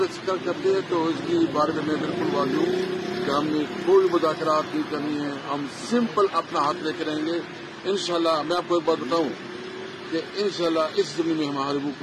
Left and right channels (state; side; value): identical; both; correlation 1.00